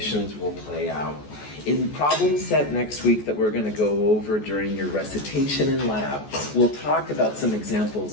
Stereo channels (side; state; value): right; late; 14 ms